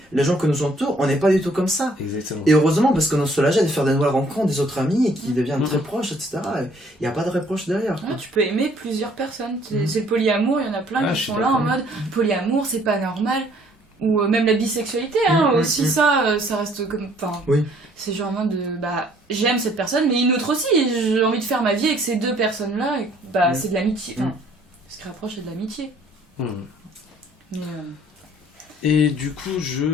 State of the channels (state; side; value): normal; both; correlation 0.61